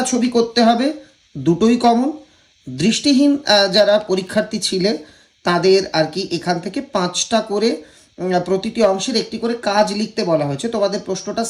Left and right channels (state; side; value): identical; both; correlation 1.00